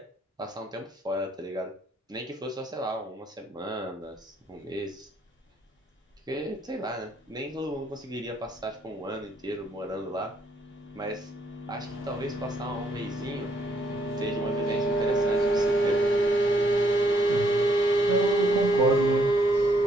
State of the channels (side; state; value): both; normal; correlation 0.71